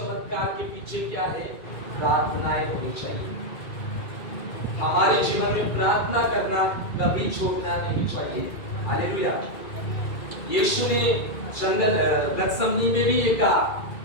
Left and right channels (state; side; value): late; right; 2.3 ms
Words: के पीछे क्या है, प्रार्थनाएं होनी चाहिए। हमारे जीवन में प्रार्थना करना कभी छोड़ना नहीं चाहिए। हालेलुया। यीशु ने जंगल गतसमनी में भी ये कहा